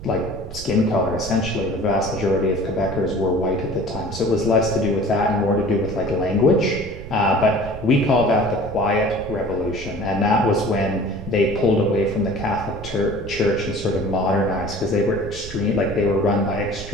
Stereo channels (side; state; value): right; noise; rumble, 12 dB below the sound